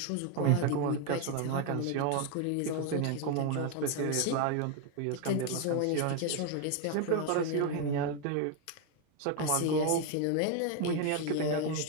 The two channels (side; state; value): both; different; correlation 0.01